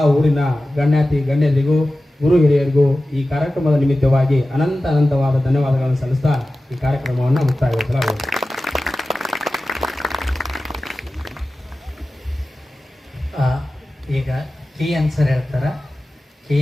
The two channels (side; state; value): both; normal; correlation 0.95